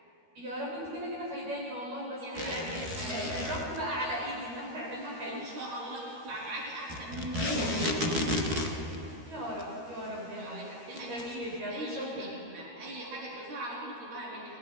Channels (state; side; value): late; left; 13 ms